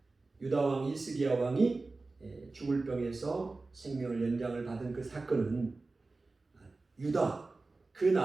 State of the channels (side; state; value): left; quieter; 3.5 dB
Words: 유다 왕 히스기야 왕이 죽을 병에서 생명을 연장을 받은 그 사건은 유다 그